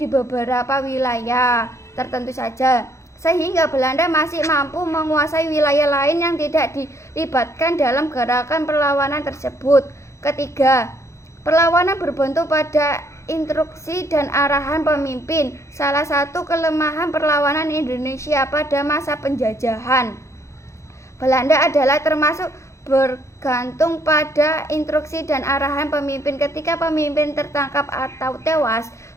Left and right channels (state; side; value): late; right; 0.14 ms